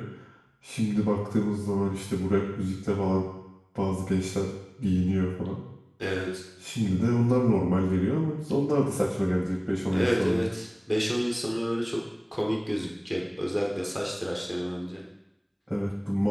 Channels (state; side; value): identical; both; correlation 1.00